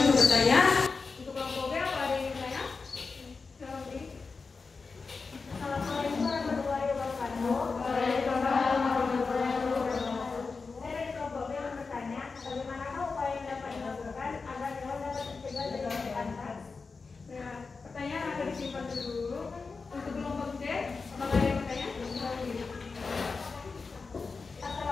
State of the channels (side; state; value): right; quieter; 4.5 dB